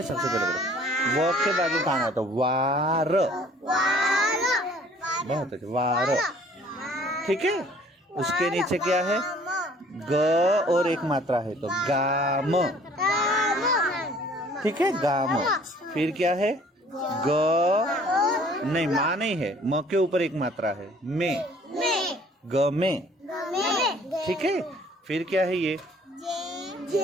सबसे पहले पढ़ो। व के बाजू कहाँ आता, वार, बहुत अच्छा, वार, ठीक है। उसके नीचे क्या है, ग और एक मात्रा है तो गाम, ठीक है, गाम। फिर क्या है, ग नहीं, माँ नहीं है, म के ऊपर एक मात्रा है, में, ग में, ठीक है। फिर क्या है ये,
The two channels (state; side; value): normal; both; correlation 0.55